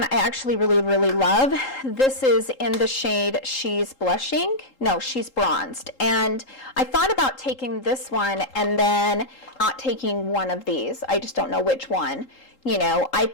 I actually really love. This is in the shade She's Blushing. No, She's Bronzed. And I thought about taking this one and then not taking one of these. I just don't know which one. You know, I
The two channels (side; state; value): right; late; 3.8 ms